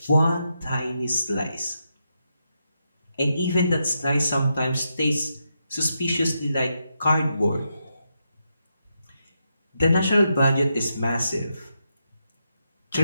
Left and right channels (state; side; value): inverted; both; correlation -0.84